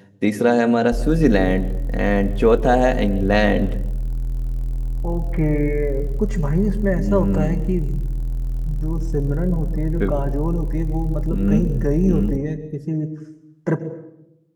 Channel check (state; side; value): identical; both; correlation 1.00